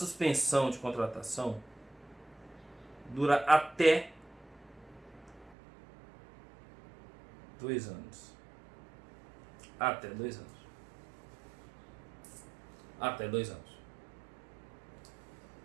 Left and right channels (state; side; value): drops out; left; at 5.6 s